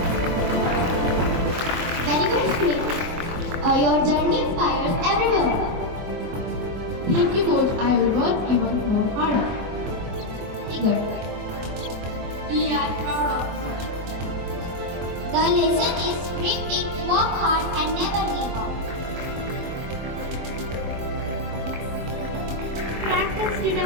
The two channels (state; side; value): late; left; 23 ms